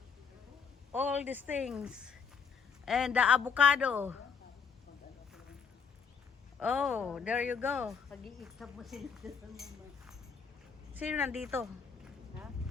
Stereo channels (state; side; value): quieter; right; 6.1 dB